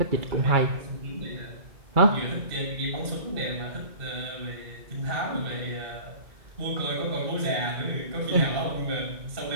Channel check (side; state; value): left; late; 2.1 ms